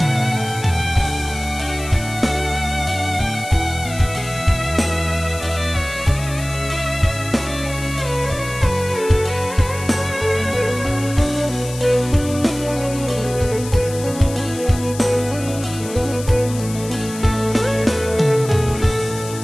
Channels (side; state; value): left; noise; hiss, 13 dB below the sound